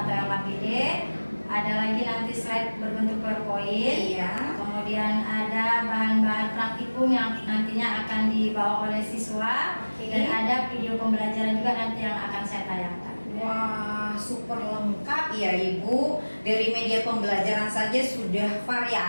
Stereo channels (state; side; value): inverted; both; correlation -1.00